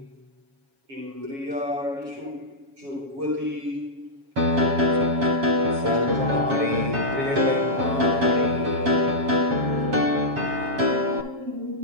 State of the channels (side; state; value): left; late; 7.3 ms